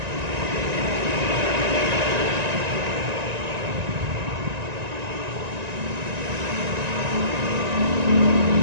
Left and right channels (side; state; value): left; late; 1.9 ms